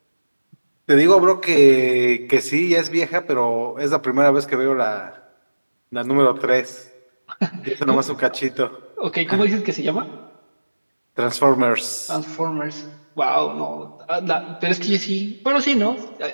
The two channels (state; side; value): inverted; both; correlation -1.00